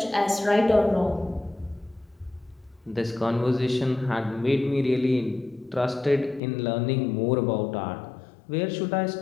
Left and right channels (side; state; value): right; drops out; at 6.4 s